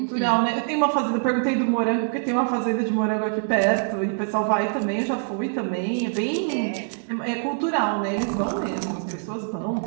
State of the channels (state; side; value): silent; left; digital silence